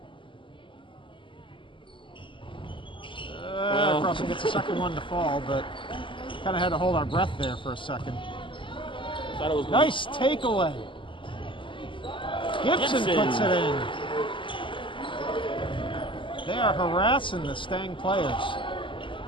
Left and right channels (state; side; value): late; right; 0.25 ms